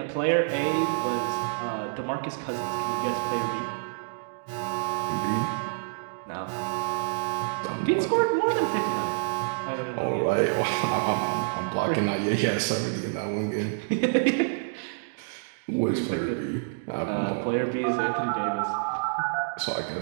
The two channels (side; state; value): left; silent; digital silence